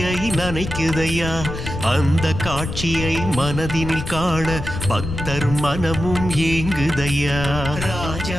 நனைக்குதையா. அந்த காட்சியை மனதினில் காண பக்தர் மனமும் ஏங்குதையா.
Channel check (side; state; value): left; noise; rumble, 7 dB below the sound